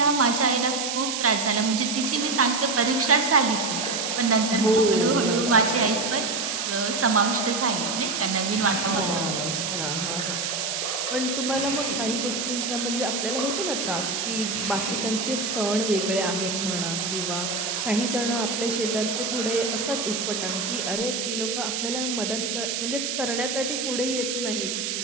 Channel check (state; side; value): noise; right; hiss, 2 dB below the sound